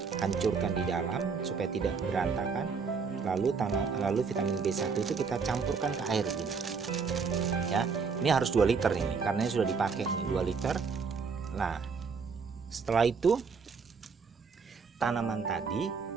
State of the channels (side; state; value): left; quieter; 5.3 dB